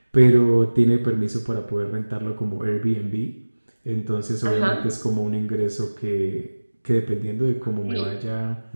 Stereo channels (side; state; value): both; inverted; correlation -1.00